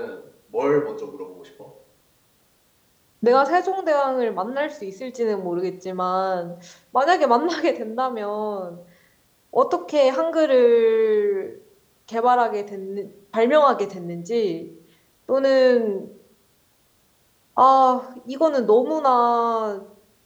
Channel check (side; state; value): both; identical; correlation 1.00